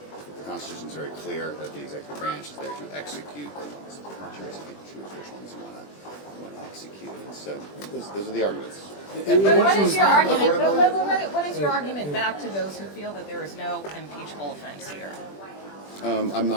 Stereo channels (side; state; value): right; late; 20 ms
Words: Constitution is very clear that the executive branch is there to execute the laws. Choose which ones you want to execute. And so those are the arguments. But what is your argument? What is your argument back to those who feel that there is no impeachable offense here? I'm